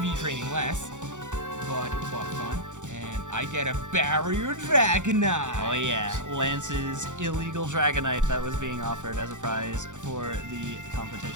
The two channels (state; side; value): late; left; 0.85 ms